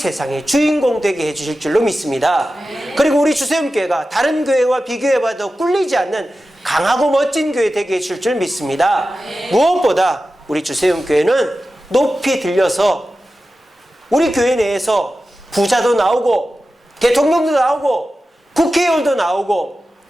주인공 되게 해주실 줄로 믿습니다. 그리고 우리 주세음교회가 다른 교회와 비교해봐도 꿀리지 않는 강하고 멋진 교회 되게 해줄 줄 믿습니다. 무엇보다 우리 주세음교회는 높이 들려서 우리 교회 내에서 부자도 나오고 대통령도 나오고 국회의원도 나오고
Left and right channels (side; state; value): both; normal; correlation 0.93